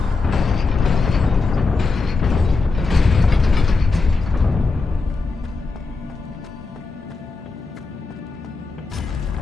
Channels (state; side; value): quieter; right; 4.0 dB